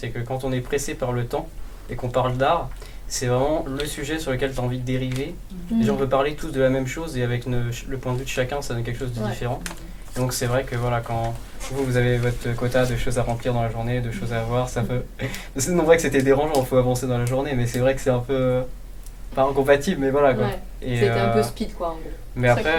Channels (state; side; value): identical; both; correlation 1.00